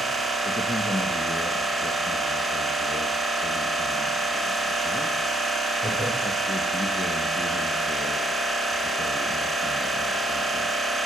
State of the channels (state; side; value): normal; both; correlation 0.67